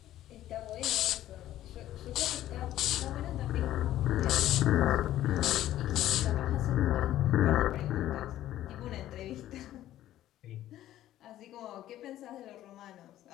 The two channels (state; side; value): quieter; right; 13.3 dB